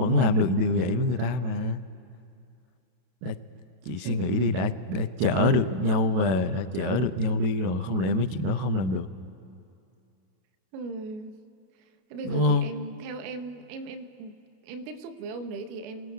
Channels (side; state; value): left; late; 32 ms